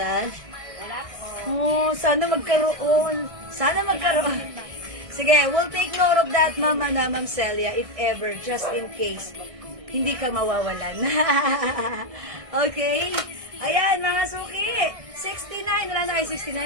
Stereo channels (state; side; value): late; left; 1.6 ms